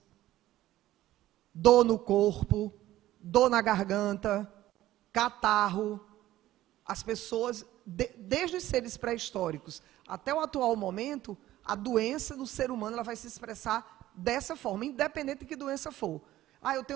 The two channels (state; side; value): quieter; left; 14.8 dB